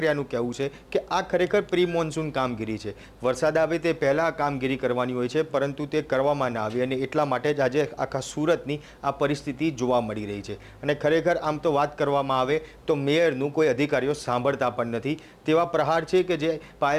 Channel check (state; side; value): identical; both; correlation 1.00